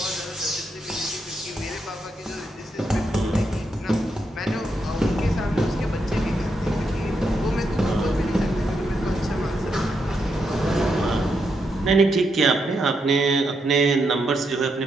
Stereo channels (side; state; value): both; normal; correlation 0.81